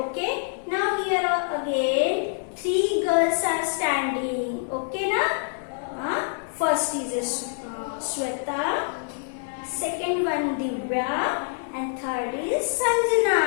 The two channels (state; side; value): silent; right; digital silence